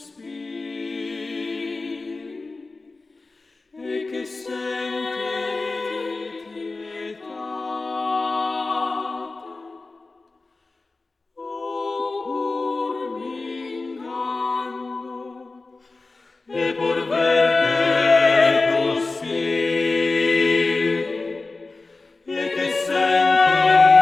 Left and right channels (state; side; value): quieter; right; 3.6 dB